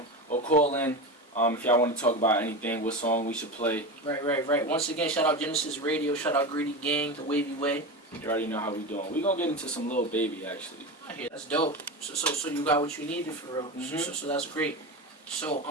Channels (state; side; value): normal; both; correlation 0.23